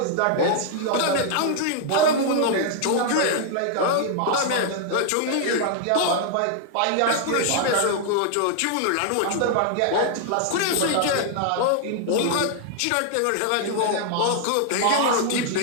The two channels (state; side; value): different; both; correlation 0.00